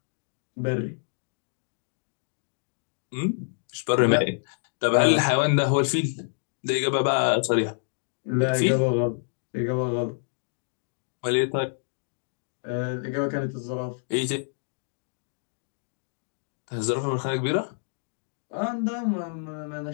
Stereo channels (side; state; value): right; silent; digital silence